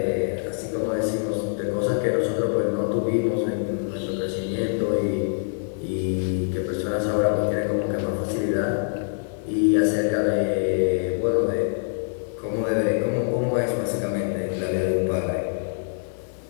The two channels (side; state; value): right; silent; digital silence